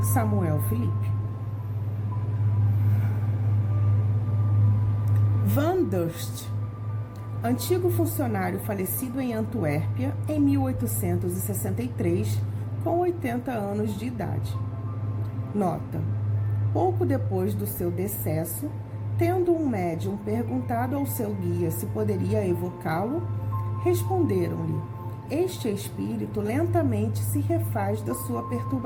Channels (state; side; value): identical; both; correlation 1.00